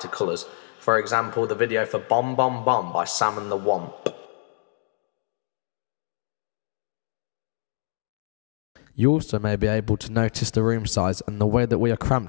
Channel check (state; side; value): silent; right; digital silence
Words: colours. For example, the video for Bomb Bomb Bomb by Sam and the Womp. You also may be able to notice the room size and the way that we are